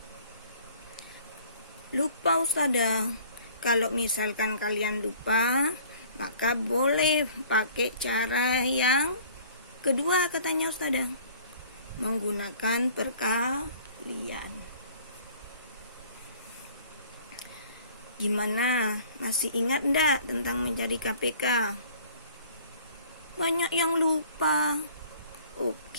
Lupa Ustadzah. Kalau misalkan kalian lupa, maka boleh pakai cara yang kedua katanya Ustadzah, menggunakan perkalian. Gimana? Masih ingat enggak tentang mencari KPK? Banyak yang lupa.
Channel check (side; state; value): both; inverted; correlation -0.52